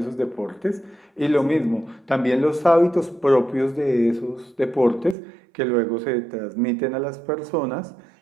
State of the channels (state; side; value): drops out; left; at 5.2 s